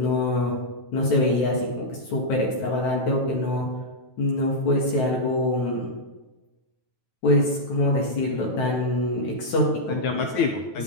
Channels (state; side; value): late; right; 9.1 ms